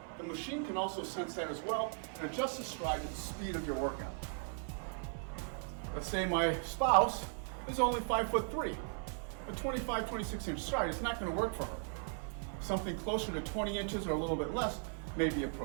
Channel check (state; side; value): silent; left; 53 dB below the other